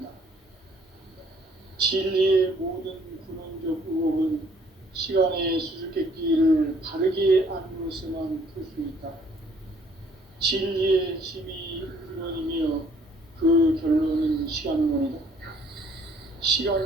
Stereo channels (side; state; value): both; normal; correlation 0.60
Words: 진리의 모든 근원적 의혹은 시간의 수수께끼를 바르게 알므로서만 풀 수 있다. 진리의 핵심이 우주론이며 그 결론은 시간론이다.